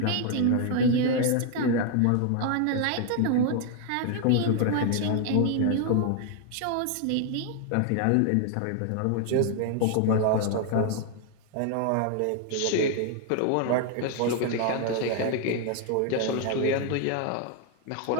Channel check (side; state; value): both; different; correlation 0.00